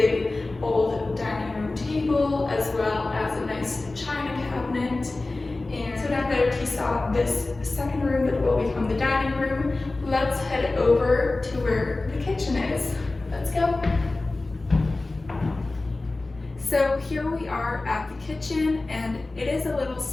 old dining room table, as well as a nice china cabinet. And so now that you saw this second room that will become the dining room, let's head over to where the kitchen is. Let's go. So here we are at the kitchen, and it is a little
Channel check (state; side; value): quieter; right; 3.1 dB